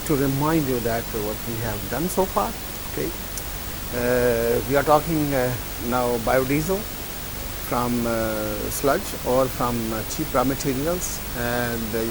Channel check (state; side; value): identical; both; correlation 1.00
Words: to remind you that what we have done so far. Okay, we are talking now biodiesel from sludge or from cheap raw materials, and